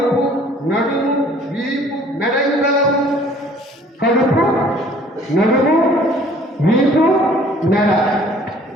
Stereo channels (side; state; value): both; normal; correlation 0.54